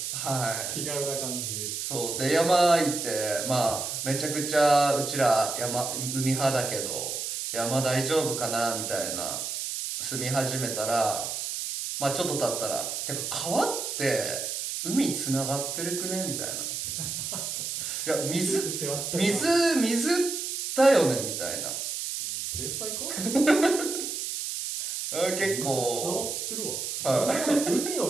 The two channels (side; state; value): right; noise; hiss, 4 dB below the sound